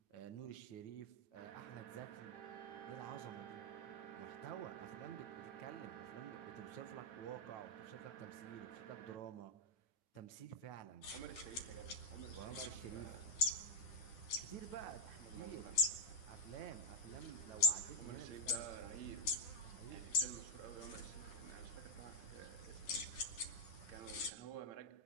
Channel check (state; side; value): late; right; 9.9 ms